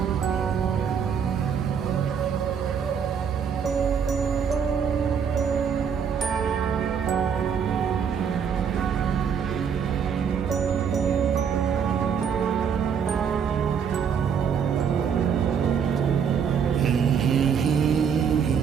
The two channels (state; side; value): quieter; left; 7.2 dB